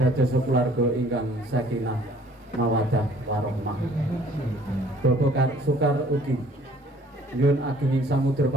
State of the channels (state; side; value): normal; both; correlation 0.57